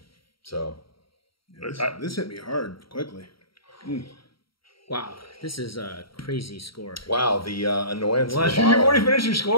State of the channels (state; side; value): late; right; 0.74 ms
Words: So this hit me hard quickly. Wow, this is a crazy score. wow, the annoyance of the You've bottle. already finished your